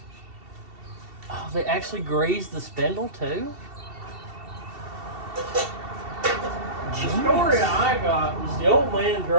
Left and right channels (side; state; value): left; late; 2.7 ms